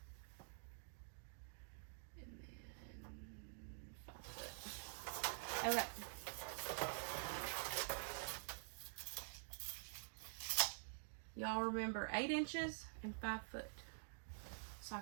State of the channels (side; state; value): left; silent; digital silence